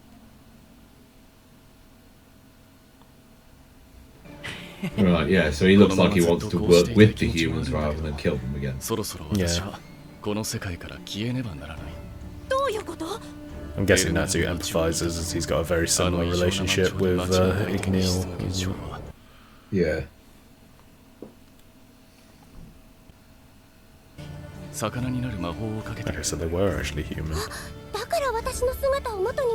Right, yeah, so he looks like he wants to work with the humans rather than kill them again. そろそろ私はこの世界から消えねばならない。どういうこと？ I'm guessing Natsu empathizes as he's got a very あの similar 異常な街 relationship を with 間違えて Igneel. その現象は Yeah. 魚になる魔法をかけて Okay, so they were actually human. だから私の姿を元に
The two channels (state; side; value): identical; both; correlation 1.00